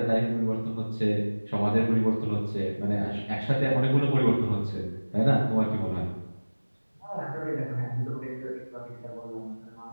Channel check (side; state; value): both; inverted; correlation -1.00